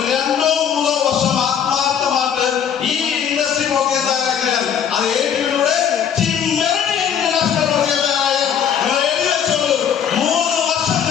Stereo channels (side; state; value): right; quieter; 8.4 dB